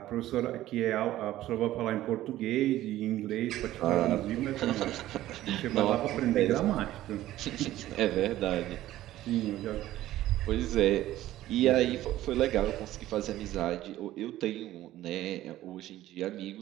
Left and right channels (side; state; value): left; quieter; 14.6 dB